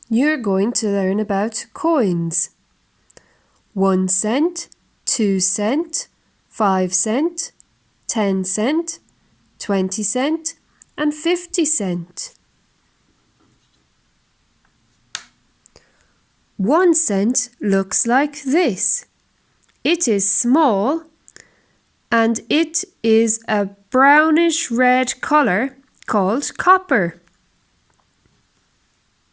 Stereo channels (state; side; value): identical; both; correlation 1.00